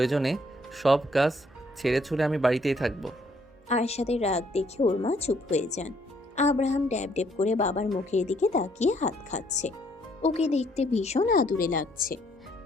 সব কাজ ছেড়ে ছুড়ে আমি বাড়িতেই থাকবো। আরশাদের রাগ দেখে ওর মা চুপ হয়ে যান। আব্রাহাম ড্যাব ড্যাব করে বাবার মুখের দিকে তাকিয়ে হাত খাচ্ছে। ওকে দেখতে ভীষণ আদুরে লাগছে।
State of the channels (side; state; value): both; normal; correlation 0.67